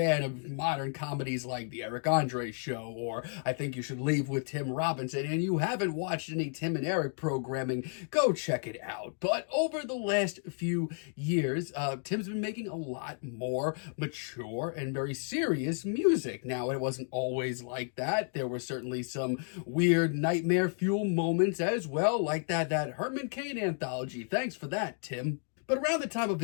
of modern comedies like The Eric Andre Show or I Think You Should Leave with Tim Robinson and you haven't watched any Tim and Eric programming, go check it out. But over the last few years, Tim's been making a lot more mature and very serious music. Now, it wasn't always like that. There were certainly some weird nightmare fuel moments as well, like that Herman Cain anthology. Thanks for that, Tim. But around the time of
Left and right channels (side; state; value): right; silent; 56 dB below the other